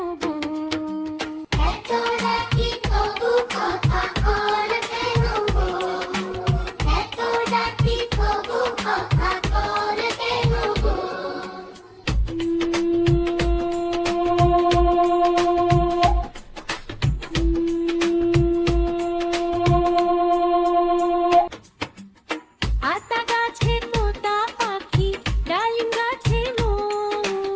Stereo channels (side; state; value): both; identical; correlation 1.00